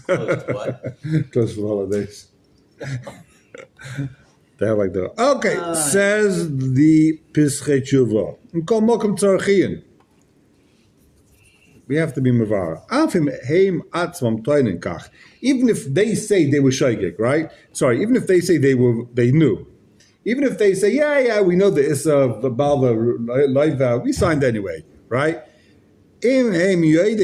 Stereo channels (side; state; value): both; identical; correlation 1.00